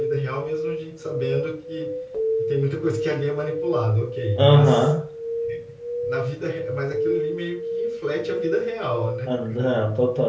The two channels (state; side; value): identical; both; correlation 1.00